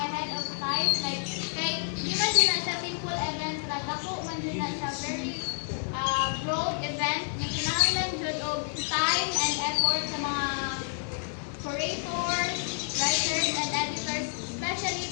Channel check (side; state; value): right; silent; digital silence